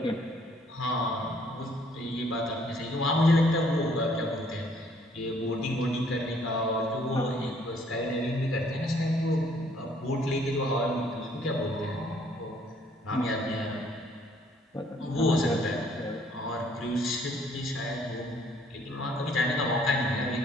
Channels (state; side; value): normal; both; correlation 0.63